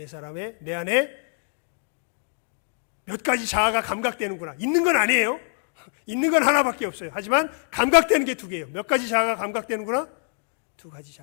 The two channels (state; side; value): silent; right; 59 dB below the other